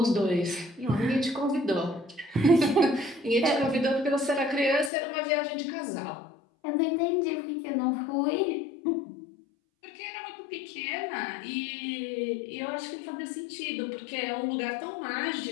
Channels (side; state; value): right; drops out; at 4.9 s